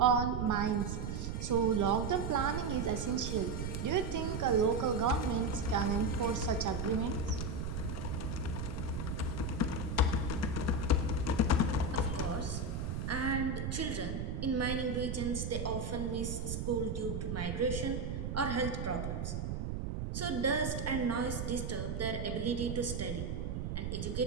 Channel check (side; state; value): right; noise; rumble, 3 dB below the sound